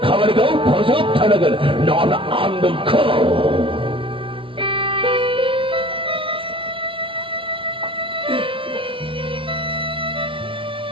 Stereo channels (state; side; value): late; left; 0.25 ms